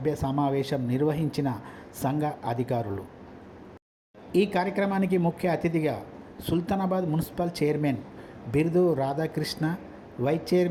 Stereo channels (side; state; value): both; identical; correlation 1.00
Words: సమావేశం నిర్వహించిన సంఘ అధికారులు. ఈ కార్యక్రమానికి ముఖ్య అతిథిగా Sultanabad municipal chairman Birdu Radhakrishna, vice